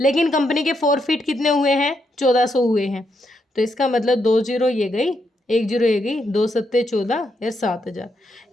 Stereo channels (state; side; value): normal; both; correlation 0.80